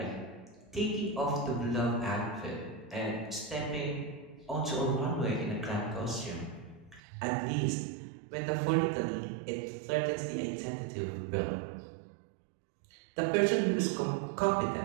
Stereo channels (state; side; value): drops out; left; at 7.0 s